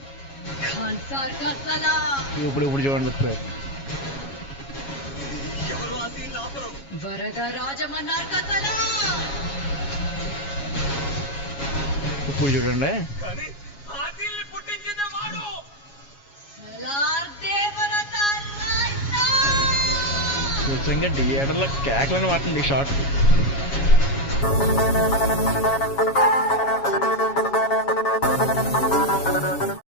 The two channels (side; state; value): right; late; 7.2 ms